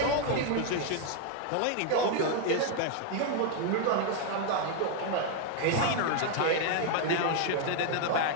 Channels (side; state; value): both; different; correlation 0.01